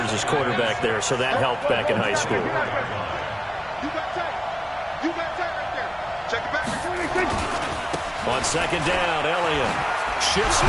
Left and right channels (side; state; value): both; identical; correlation 1.00